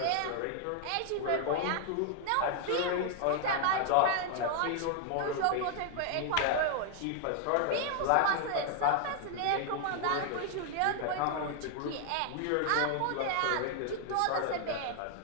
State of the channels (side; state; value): both; different; correlation 0.00